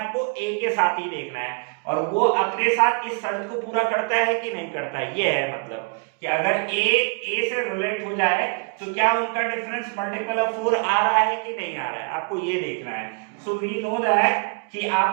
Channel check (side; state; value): left; quieter; 34.6 dB